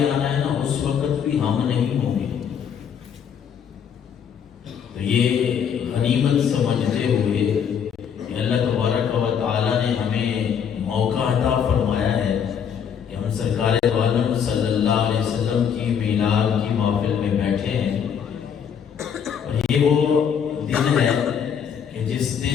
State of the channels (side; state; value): right; quieter; 7.8 dB